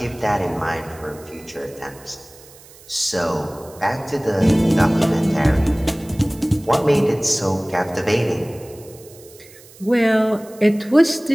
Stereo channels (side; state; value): right; noise; hiss, 23 dB below the sound